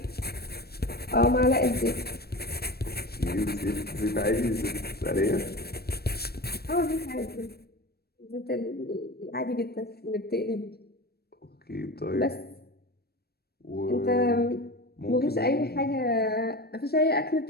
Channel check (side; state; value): right; late; 0.46 ms